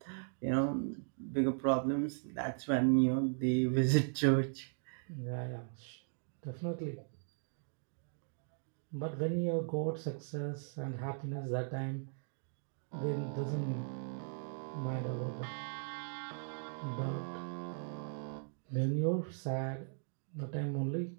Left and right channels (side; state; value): left; silent; digital silence